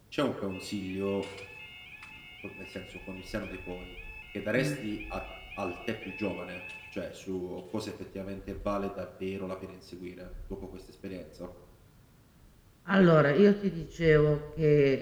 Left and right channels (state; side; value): identical; both; correlation 1.00